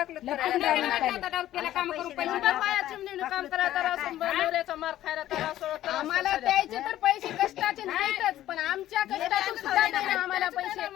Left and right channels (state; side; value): quieter; right; 13.4 dB